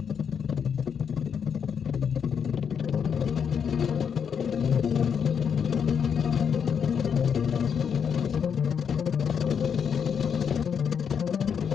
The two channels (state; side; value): quieter; right; 7.2 dB